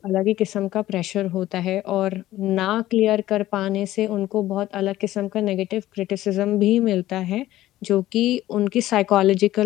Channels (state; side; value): quieter; right; 15.0 dB